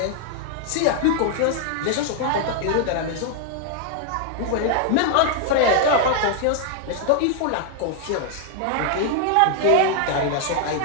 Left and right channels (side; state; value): both; different; correlation 0.00